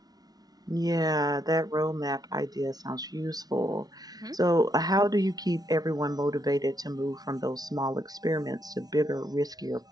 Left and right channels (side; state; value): left; late; 0.19 ms